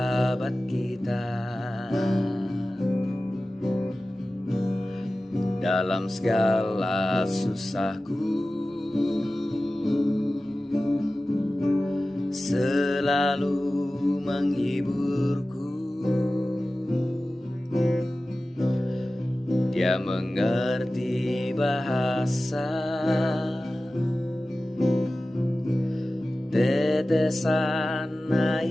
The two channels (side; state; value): both; normal; correlation 0.96